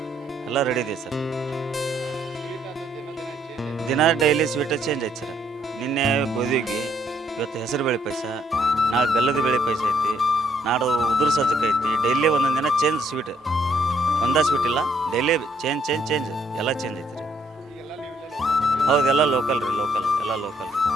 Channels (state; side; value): normal; both; correlation 0.69